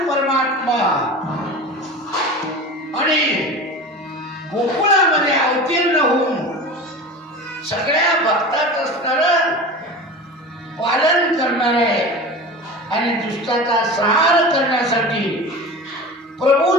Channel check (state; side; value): normal; both; correlation 0.32